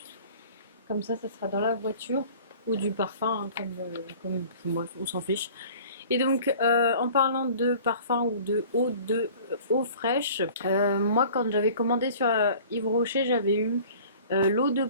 Comme ça sera dans la voiture. Ou du parfum, hein, comme bref, on s'en fiche. Et donc, en parlant de parfum ou de eau fraîche, moi quand j'avais commandé sur Yves Rocher, j'avais eu l'eau de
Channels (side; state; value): both; inverted; correlation -0.46